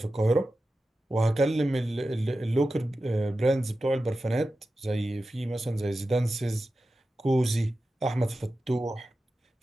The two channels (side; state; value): both; normal; correlation 0.93